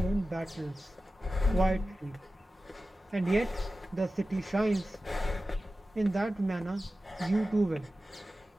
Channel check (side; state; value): both; normal; correlation 0.94